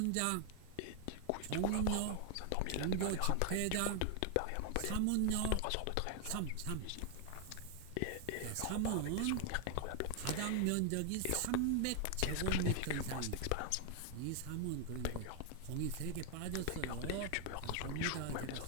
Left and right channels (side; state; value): both; different; correlation 0.00